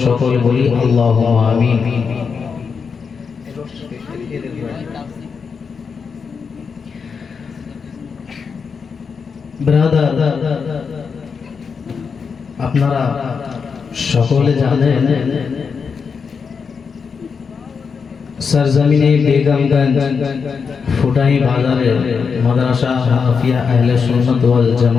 সকলে বলি আল্লাহুম্মা আমিন। ব্রাদার, আপনারা সকলে জানেন सरजमीने बेगमगंज ফুটাই বাজারে মাদ্রাসা হাফিয়া আহলে সুন্নাত ওয়াল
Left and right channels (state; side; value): quieter; right; 5.7 dB